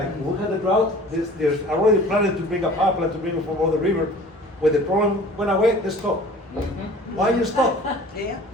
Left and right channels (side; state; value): both; normal; correlation 0.45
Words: when we had the drought, there's already planning to bring a pipeline to bring it from the river. When the problem went away, they stopped. Why you stop? Yeah.